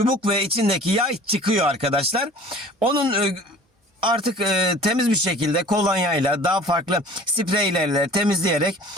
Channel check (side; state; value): both; normal; correlation 0.46